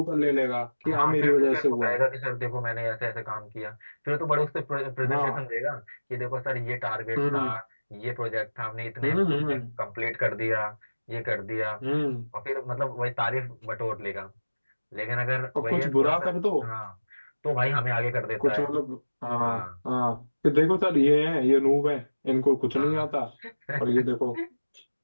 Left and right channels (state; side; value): inverted; both; correlation -1.00